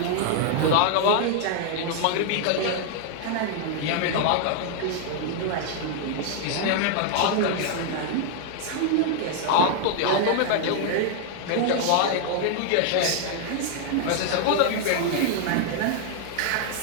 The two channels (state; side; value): different; both; correlation 0.00